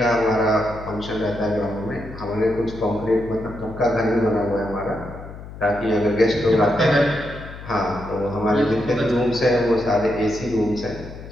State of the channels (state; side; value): noise; left; hum, 13 dB below the sound